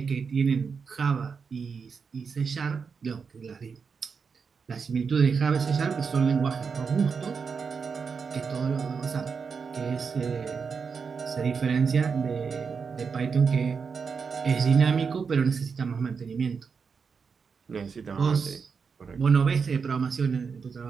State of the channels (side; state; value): left; quieter; 5.7 dB